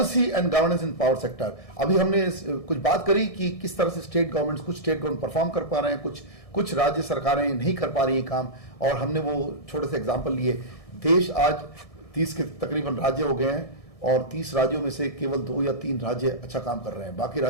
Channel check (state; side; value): late; right; 1.6 ms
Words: and governance in power sector. अभी हमने कुछ बात करी कि किस तरह से कुछ स्टेट गवर्नमेंट परफॉर्म कर पा रहे हैं, कुछ राज्य सरकारें नहीं कर पा रही हैं काम, और हमने वो छोटे से एग्जांपल लिए। देश आज 30 के तकरीबन राज्य हो गए हैं और 30 राज्यों में से केवल 2 या 3 राज्य अच्छा काम कर रहे हैं। बाकी